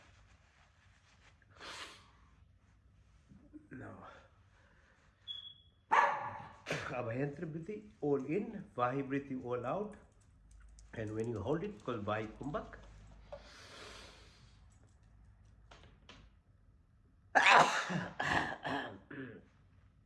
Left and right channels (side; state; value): both; identical; correlation 1.00